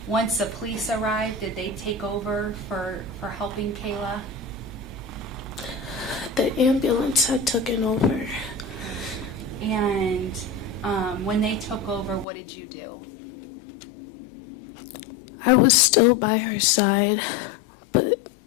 Once the police arrived, did they take over for helping Kayla? The ambulance had taken over. And when they took over, what did you do? I was still by her side,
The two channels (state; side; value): drops out; right; at 12.2 s